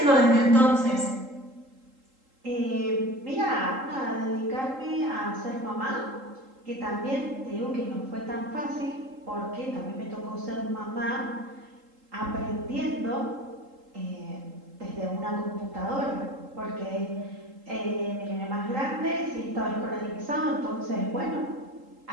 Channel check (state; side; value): late; left; 3.8 ms